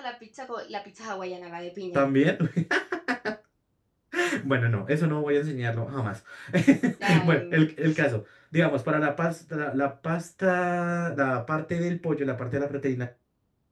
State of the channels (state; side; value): identical; both; correlation 1.00